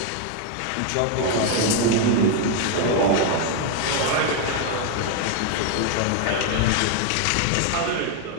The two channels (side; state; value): both; different; correlation 0.01